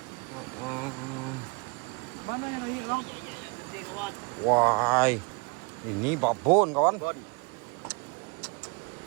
Mana yang ini bang? Gede kawan. Wah, ini babon kawan. Bon.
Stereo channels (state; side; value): quieter; left; 31.6 dB